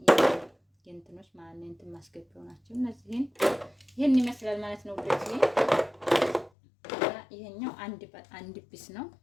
የእንትኖች ማለት ነው እንትን ማስገቢያው ናቸው። እነዚህን ይሄን ይመስላል ማለት ነው ውዶች። ይሄኛው አንድ ቢስ ነው።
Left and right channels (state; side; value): drops out; right; at 6.5 s